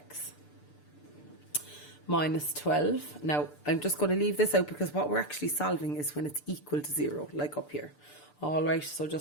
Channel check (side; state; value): right; late; 6.8 ms